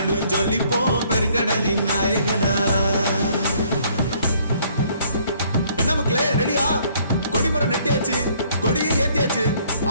ஜொலிப்போம் பெருங்கடலின் நாயகனா. என்ன மக்களே, ரெடியா? கொடிமரம் நெட்டியாச்சு, கொடியை ஏத்தியாச்சு.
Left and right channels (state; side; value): inverted; both; correlation -0.63